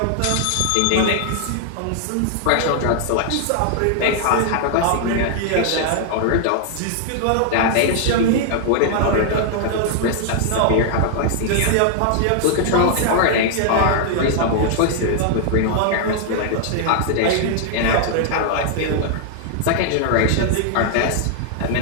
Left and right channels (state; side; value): different; both; correlation -0.01